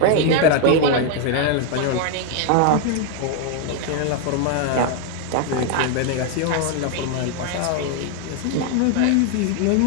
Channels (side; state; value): both; different; correlation 0.00